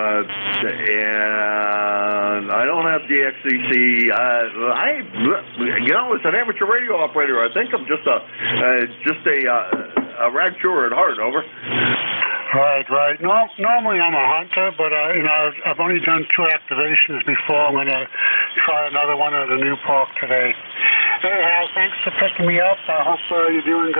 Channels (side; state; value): both; inverted; correlation -1.00